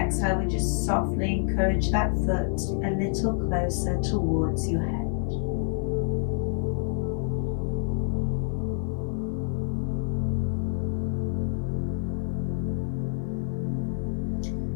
we just softly encourage that foot a little closer towards your head.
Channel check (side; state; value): right; silent; 60 dB below the other